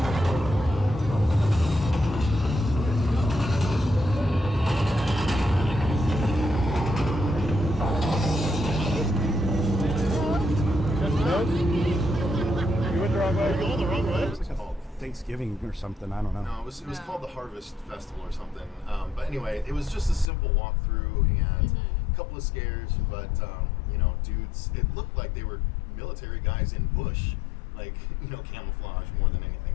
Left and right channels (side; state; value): right; drops out; at 20.3 s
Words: Thanksgiving or something, I don't know. No, it was called the Harvest Festival or something. But anyway, it was just a simple walkthrough and a couple of scares, but dudes, it looked like they were military guys in bush, like, camouflage more than